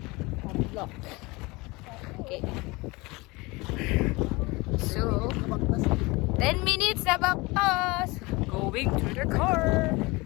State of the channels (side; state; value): right; quieter; 23.9 dB